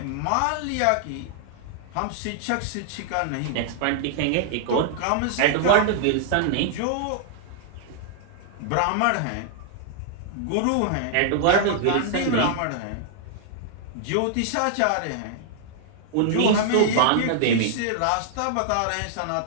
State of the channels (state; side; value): different; both; correlation -0.01